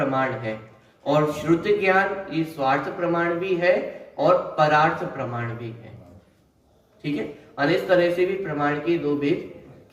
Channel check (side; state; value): both; identical; correlation 1.00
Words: है और श्रुति ज्ञान ये स्वार्थ प्रमाण भी है और परार्थ प्रमाण भी है। ठीक है, और इस तरह से भी प्रमाण के 2 भेद